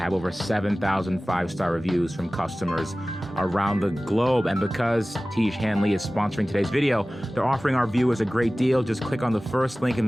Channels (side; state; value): both; normal; correlation 0.97